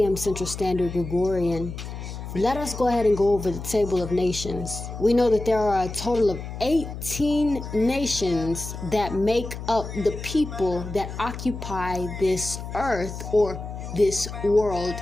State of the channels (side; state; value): left; noise; hum, 9 dB below the sound